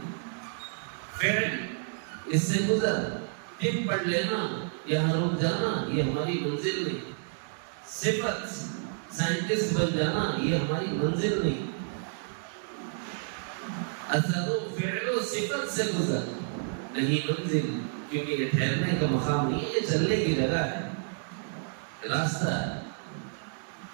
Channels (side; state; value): left; silent; digital silence